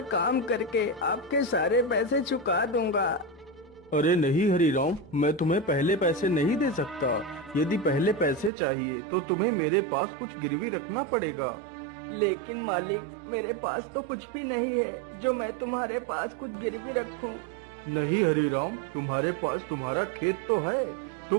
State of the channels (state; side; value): drops out; left; at 8.5 s